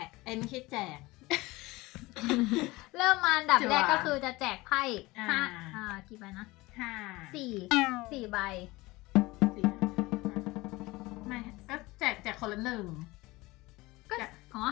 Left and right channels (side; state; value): right; quieter; 21.1 dB